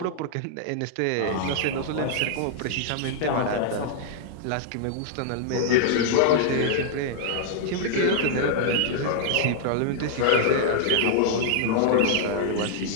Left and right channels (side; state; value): both; different; correlation -0.01